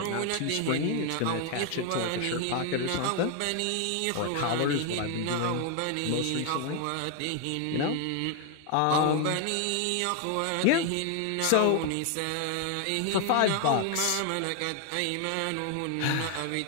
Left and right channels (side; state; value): both; different; correlation 0.00